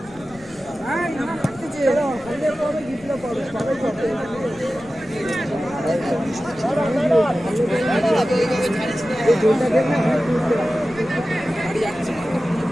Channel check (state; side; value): noise; left; rumble, 23 dB below the sound